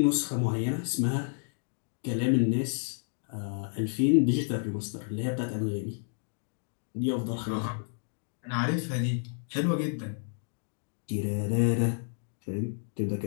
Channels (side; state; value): right; silent; digital silence